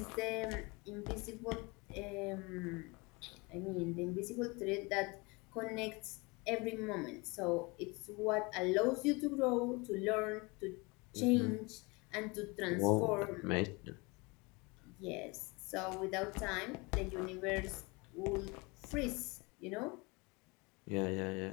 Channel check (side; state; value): right; quieter; 26.6 dB